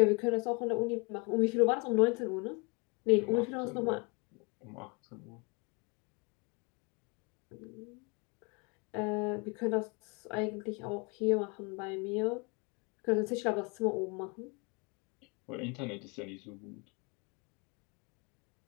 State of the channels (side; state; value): right; quieter; 31.1 dB